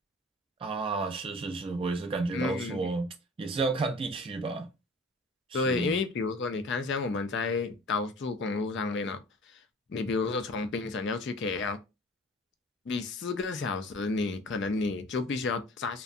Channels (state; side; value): normal; both; correlation 0.45